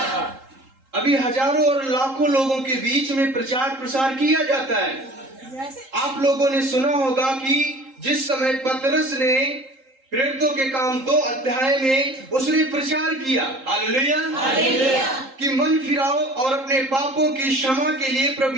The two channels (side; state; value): left; late; 3.8 ms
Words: अभी हजारों और लाखों लोगों के बीच में प्रचार प्रसार किया जाता है। आप लोगों ने सुना होगा कि जिस समय पतरस ने प्रेरितों के काम 2 अध्याय में उसने प्रचार किया। हालेलुया। कि मन फिराओ और अपने पापों की क्षमा के लिए